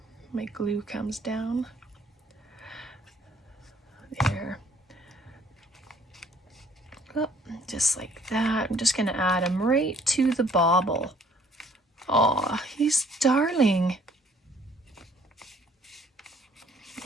My glue comes down. There. Oh, just like that. I'm just gonna add him right to the bauble. Aw, he's darling.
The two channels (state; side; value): normal; both; correlation 0.60